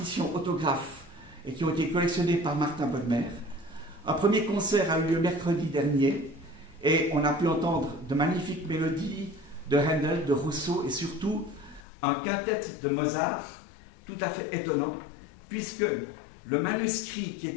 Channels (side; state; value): right; drops out; at 11.8 s